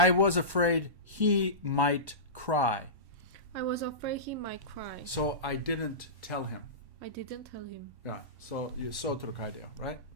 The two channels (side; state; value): left; late; 1.1 ms